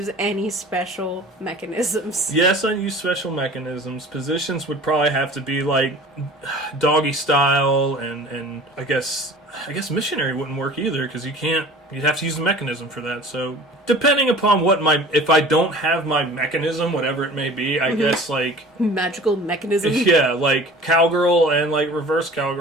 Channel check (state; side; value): normal; both; correlation 0.43